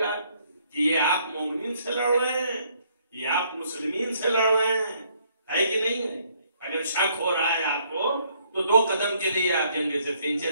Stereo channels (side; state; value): both; inverted; correlation -0.67